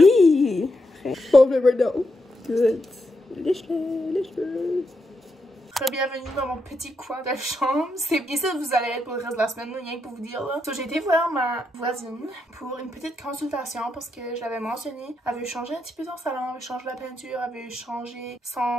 Bon, never know. Good. Lèche-le. Bienvenue dans mon petit coin de chambre. C'est bien ça que vous allez être pour le reste de la semaine, rien que pour vous dire là. So, j'ai été voir ma voisine pour une petite consultation parce que je l'avais mentionné. Elle veut changer un petit peu son salon, elle veut changer la peinture, elle veut changer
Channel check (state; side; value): normal; both; correlation 0.83